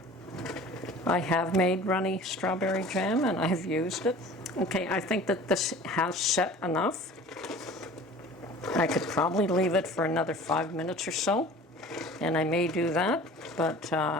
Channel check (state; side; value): normal; both; correlation 0.43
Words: I have made runny strawberry jam and I have used it. Okay, I think that this has set enough. I could probably leave it for another 5 minutes or so, and I may do that, but